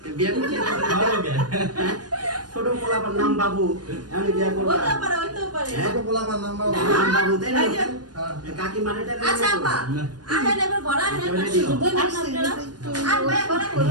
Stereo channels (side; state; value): left; late; 0.69 ms